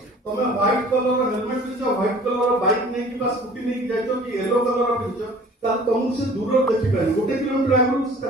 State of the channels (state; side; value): normal; both; correlation 0.49